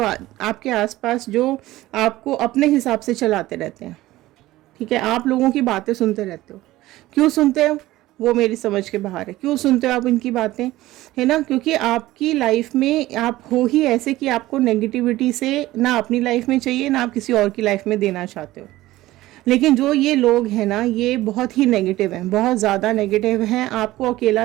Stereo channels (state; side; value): quieter; left; 16.8 dB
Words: आपके आसपास जो आपको अपने हिसाब से चलाते रहते हैं, ठीक है। आप लोगों की बातें सुनते रहते हो। क्यों सुनते हो वो मेरी समझ के बाहर है। क्यों सुनते हो आप इनकी बातें, है ना, क्योंकि आपकी लाइफ में आप हो ही ऐसे कि आपको नेगेटिविटी से ना अपनी लाइफ में चाहिए ना आप किसी और की लाइफ में देना चाहते हो। लेकिन जो ये लोग हैं ना ये बहुत ही नेगेटिव हैं, बहुत ज़्यादा नेगेटिव हैं, आपको